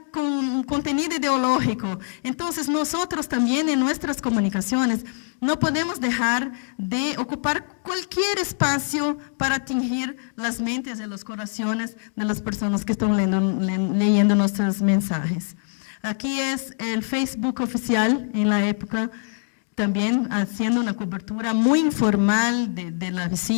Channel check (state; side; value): silent; right; digital silence